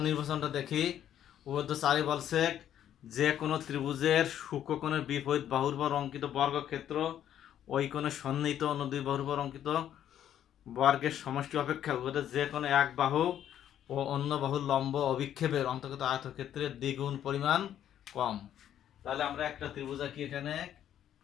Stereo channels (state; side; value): quieter; right; 10.6 dB